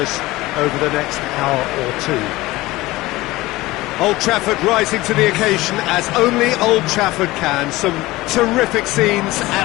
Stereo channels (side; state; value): right; quieter; 19.2 dB